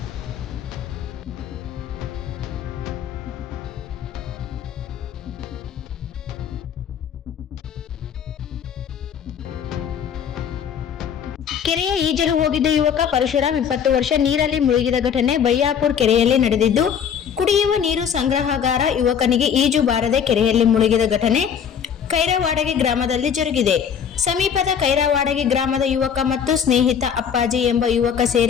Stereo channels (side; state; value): right; quieter; 7.8 dB